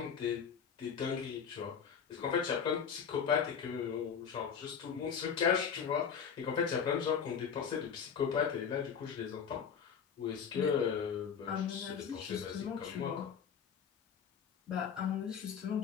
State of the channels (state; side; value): quieter; right; 7.1 dB